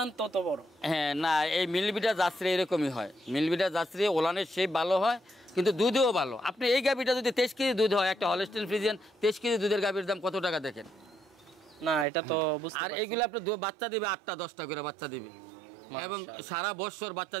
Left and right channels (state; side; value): drops out; left; at 12.1 s